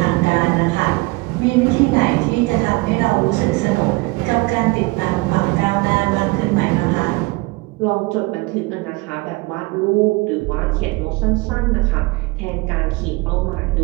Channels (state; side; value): quieter; left; 24.2 dB